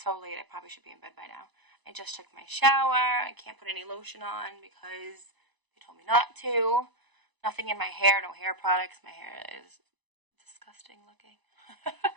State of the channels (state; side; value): late; left; 1.0 ms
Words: late. I probably should be in bed by now. I just took my shower. I can't put any lotion on because they told me not to. Nothing in my hair. No hair products. My hair is disgusting looking.